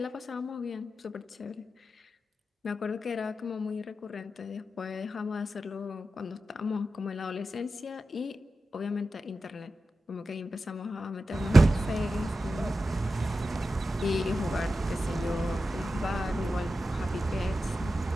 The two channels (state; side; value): normal; both; correlation 0.91